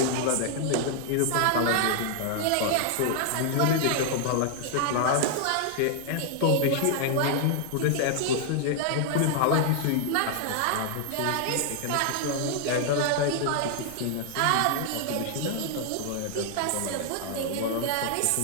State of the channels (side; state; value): both; different; correlation 0.00